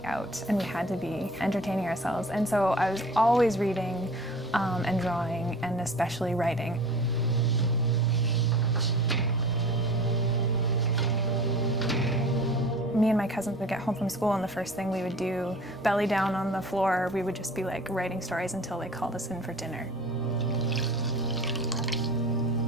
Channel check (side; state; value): both; normal; correlation 0.41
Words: out and we had to be entertaining ourselves. And so I was always reading and drawing, and especially writing. Me and my cousins would get home from school, and the first thing we would do, belly down on the floor, we would just be like writing stories until they called us in for dinner.